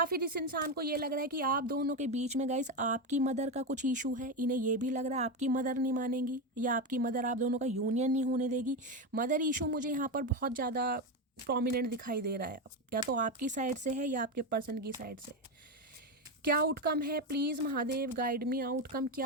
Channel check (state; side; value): normal; both; correlation 0.13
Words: फिर इस इंसान को ये लग रहा है कि आप दोनों के बीच में गाइस आपकी मदर का कुछ इशू है। इन्हें ये भी लग रहा है आपकी मदर नहीं मानेंगी, या आपकी मदर आप दोनों का यूनियन नहीं होने देगी। मदर इशू मुझे यहाँ पर बहुत ज़्यादा प्रोमिनेंट दिखाई दे रहा है, या तो आपकी साइड से है या आपके पर्सन की साइड से। क्या आउटकम है please Mahadev, guide me. Outcome